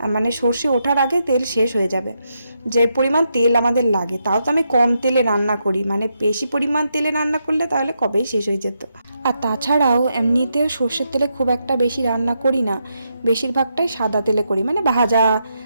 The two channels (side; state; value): both; inverted; correlation -0.82